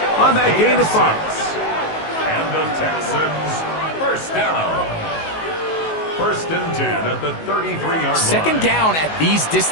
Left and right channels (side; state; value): right; late; 19 ms